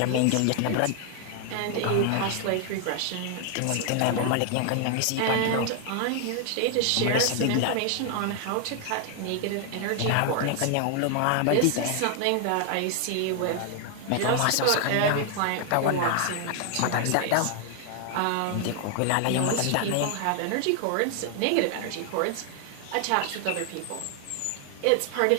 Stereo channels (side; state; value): both; different; correlation 0.00